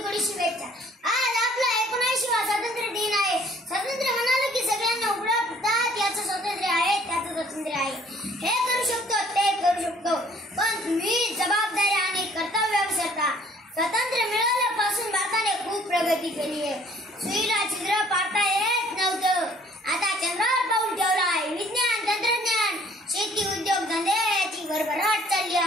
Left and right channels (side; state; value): both; normal; correlation 0.57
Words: कोटी शुभेच्छा। आज आपला 79वा स्वातंत्र्य दिन आहे। स्वातंत्र्य म्हणाले की सगळ्यांना उपलब्धतात याचं स्वातंत्र्य आहे, त्याचं स्वातंत्र्य आहे। हे करू शकतो, ते करू शकतो, पण तुम्ही जबाबदारी आणि कर्तव्य विसरता। स्वातंत्र्य मिळाल्यापासून भारताने खूप प्रगती केली आहे। सुईला छिद्र पाडता येत नव्हतं, आता चंद्रावर पाऊल ठेवलं आहे। विज्ञान, तंत्रज्ञान, शेती, उद्योग धंदे याची भरभराट चालली